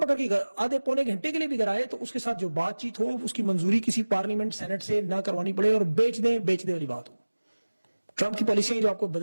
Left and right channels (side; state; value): both; inverted; correlation -1.00